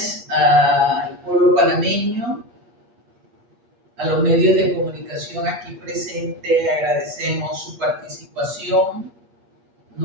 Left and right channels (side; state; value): left; late; 8.4 ms